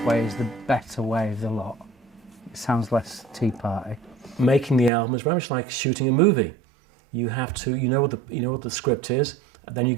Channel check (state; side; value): drops out; left; at 4.9 s